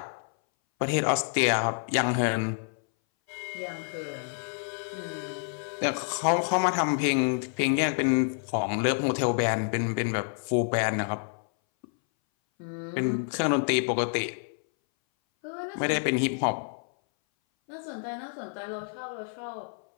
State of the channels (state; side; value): silent; right; 59 dB below the other